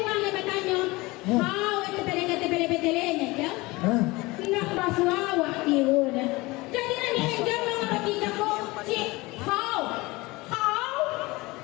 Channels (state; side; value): quieter; right; 22.2 dB